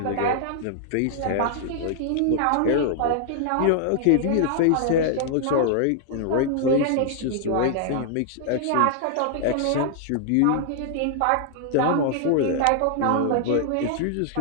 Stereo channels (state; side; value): different; both; correlation -0.01